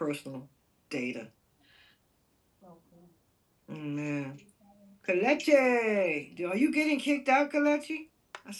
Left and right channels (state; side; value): identical; both; correlation 1.00